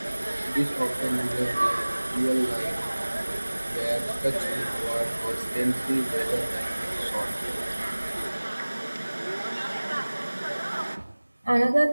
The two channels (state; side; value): inverted; both; correlation -1.00